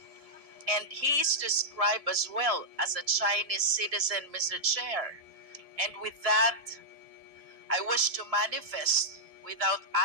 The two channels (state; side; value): late; left; 1.7 ms